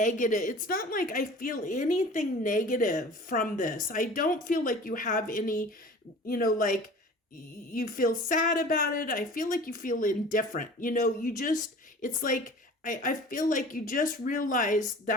It's not like I feel anything negative from this. I don't feel like you have any, like you feel sad about it. I feel like you feel indifferent. It's like, I feel like you just realize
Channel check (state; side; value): normal; both; correlation 0.42